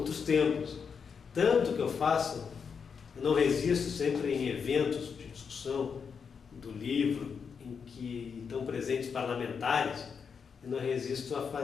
tempos. Tanto que eu não resisto sempre em eventos de discussão do livro em que estão presentes parlamentares, eu não resisto a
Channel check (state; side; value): quieter; right; 6.2 dB